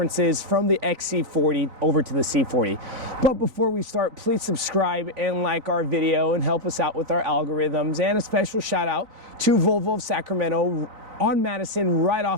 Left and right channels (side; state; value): left; late; 3.9 ms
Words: from the XC40 over to the C40. But before we start, please subscribe and like our video and help us out with our algorithms. And a special shout out to Volvo of Sacramento on Madison right